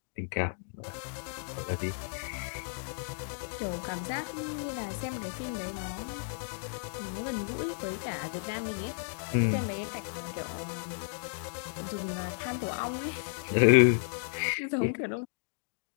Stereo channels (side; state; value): right; silent; digital silence